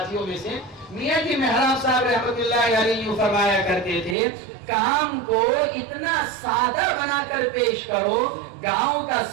میں سے۔ میاں جی محراب صاحب رحمۃ اللہ علیہ فرمایا کرتے تھے، کام کو اتنا سادہ بنا کر پیش کرو، گاؤں کا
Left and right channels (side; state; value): left; drops out; at 4.2 s